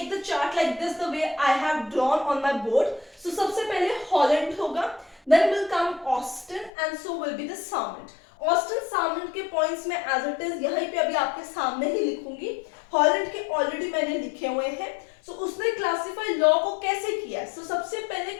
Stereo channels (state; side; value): drops out; right; at 6.7 s